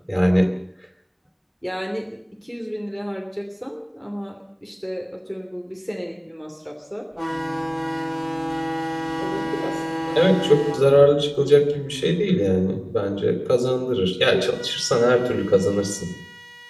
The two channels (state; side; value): identical; both; correlation 1.00